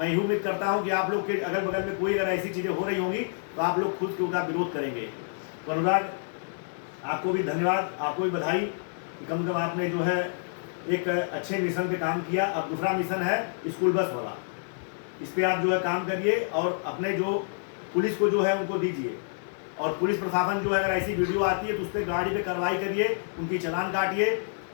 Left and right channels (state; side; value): silent; right; digital silence